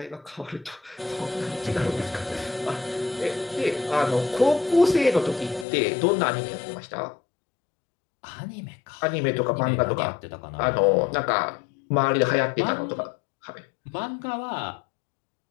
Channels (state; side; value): drops out; right; at 5.7 s